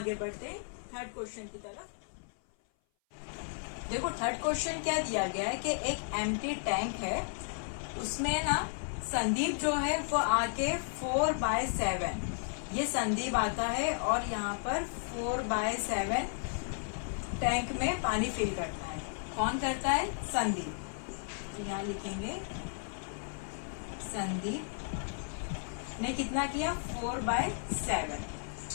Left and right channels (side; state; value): right; silent; 55 dB below the other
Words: बढ़ते हैं थर्ड क्वेश्चन की तरफ। देखो थर्ड क्वेश्चन क्या दिया गया है कि एक एम्प्टी टैंक है, उसमें ना संदीप जो है वो आके 4/7, ये संदीप आता है और यहाँ पर 4/7 टैंक में पानी फिल करता है। कौन करता है, संदीप। तो यहाँ लिखेंगे संदीप ने कितना किया, 4/7।